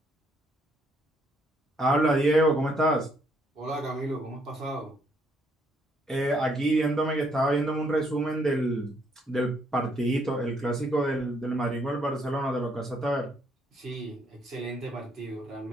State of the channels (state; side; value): normal; both; correlation 0.70